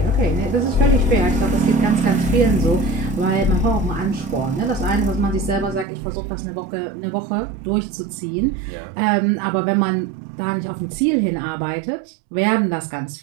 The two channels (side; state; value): left; drops out; at 5.9 s